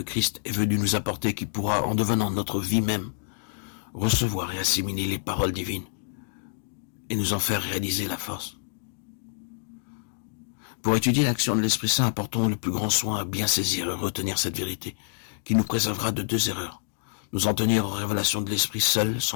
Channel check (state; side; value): silent; right; digital silence